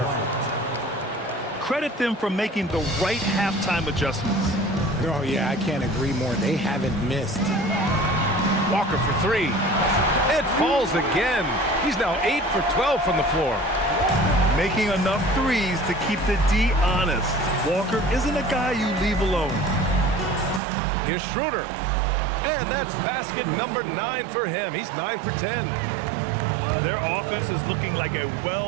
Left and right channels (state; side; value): drops out; left; at 20.6 s